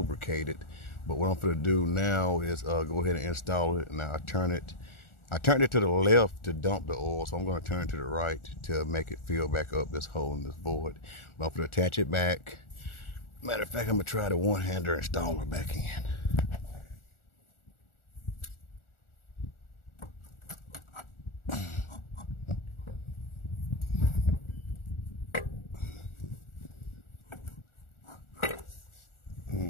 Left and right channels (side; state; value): right; late; 1.4 ms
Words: But what I'm gonna do now is go ahead and install it. Now I turned it to the left to dump the oil, so I'm gonna turn it to the right to make it fill back up this hole in this board. But I'm gonna attach it back. Matter of fact, I'm gonna try the one-hander installer back in.